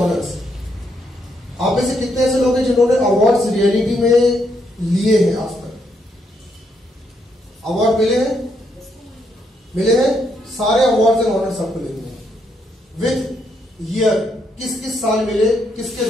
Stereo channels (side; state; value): both; normal; correlation 0.76